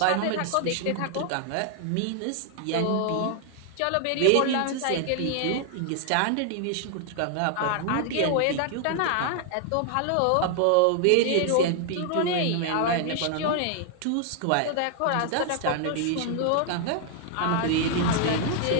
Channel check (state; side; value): different; both; correlation 0.00